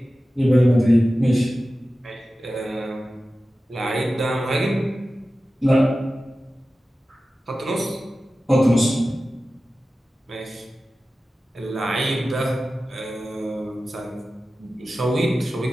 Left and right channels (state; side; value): normal; both; correlation 0.95